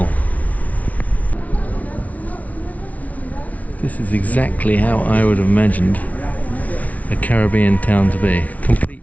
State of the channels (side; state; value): right; late; 0.070 ms